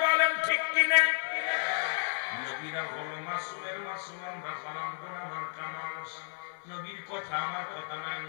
বলেন ঠিক কিনা? নবীরা হলো মাসুমের মাসুম, আমরা হলাম গুনাহগার কামাস। নবীর কথা আমার কথা নয়।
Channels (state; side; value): silent; right; 56 dB below the other